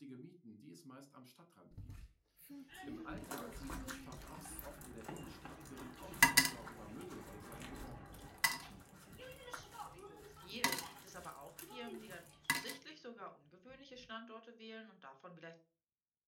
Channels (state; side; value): identical; both; correlation 1.00